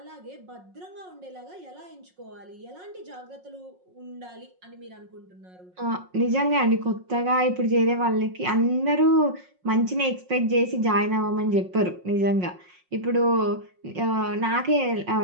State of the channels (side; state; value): left; late; 5.5 ms